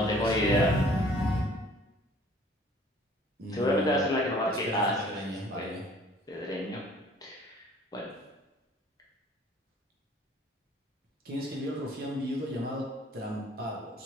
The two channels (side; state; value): both; normal; correlation 0.54